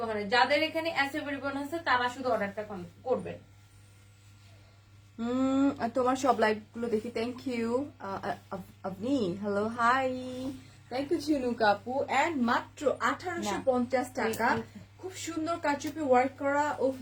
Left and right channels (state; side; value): identical; both; correlation 1.00